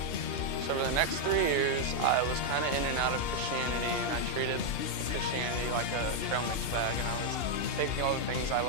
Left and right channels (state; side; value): late; right; 2.8 ms